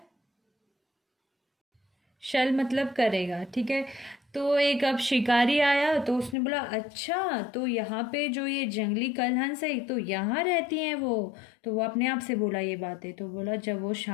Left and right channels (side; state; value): right; drops out; at 6.4 s